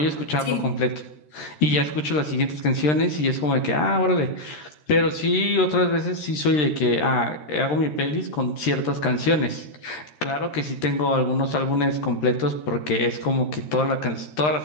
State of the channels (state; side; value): late; right; 13 ms